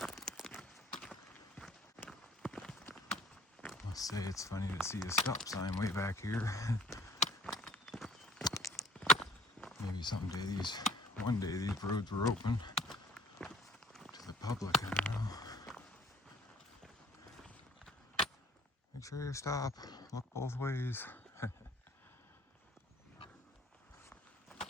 I must say it's funny to see a stop sign way back here. Maybe someday one day these roads were open to the public, I don't know. Make sure you stop, look both ways.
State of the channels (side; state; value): both; normal; correlation 0.53